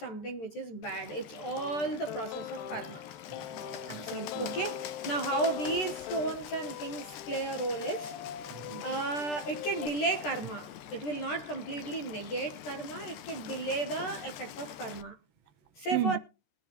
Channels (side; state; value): right; late; 13 ms